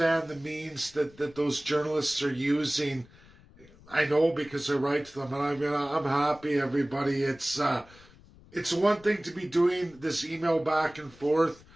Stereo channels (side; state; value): left; noise; rumble, 25 dB below the sound